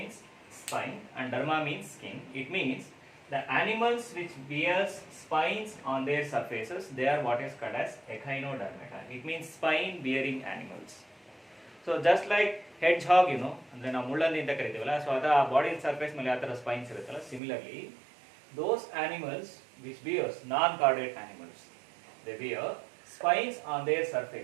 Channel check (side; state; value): left; drops out; at 17.4 s